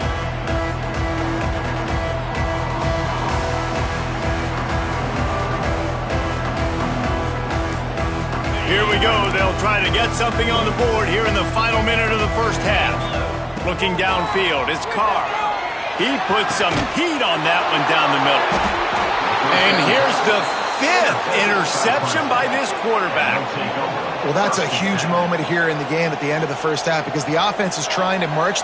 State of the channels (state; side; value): identical; both; correlation 1.00